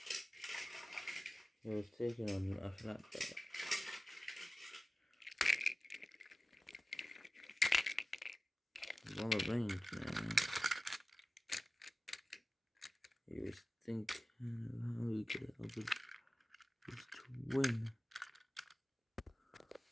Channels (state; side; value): normal; both; correlation 0.96